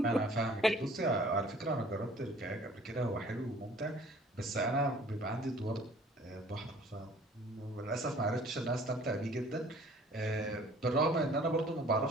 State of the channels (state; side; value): normal; both; correlation 0.52